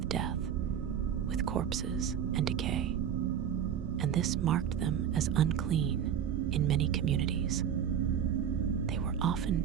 death, with corpses and decay, and this marked them as unclean in many communities. They were often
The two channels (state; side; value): quieter; left; 8.8 dB